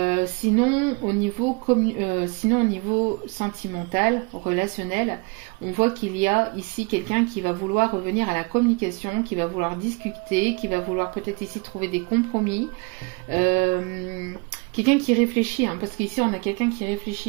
Sinon au niveau sentimental, relationnel, on voit qu'il y a ici quelqu'un qui va vouloir revenir à la communication, qui va vouloir discuter, qui va vouloir peut-être ici trouver des compromis. Quelqu'un qui réfléchit, hein, parce qu'ici on a quelqu'un qui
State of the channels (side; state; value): left; quieter; 29.5 dB